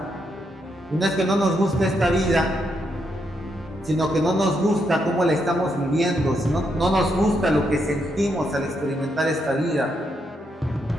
Y no es que no nos guste esta vida, sino que no nos gusta cómo la estamos viviendo, sino no nos gusta lo que sentimos al experimentar esta vida.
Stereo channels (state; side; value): normal; both; correlation 0.79